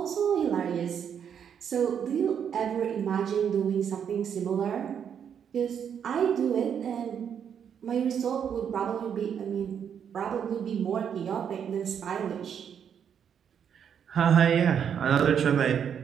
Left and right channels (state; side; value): quieter; left; 8.1 dB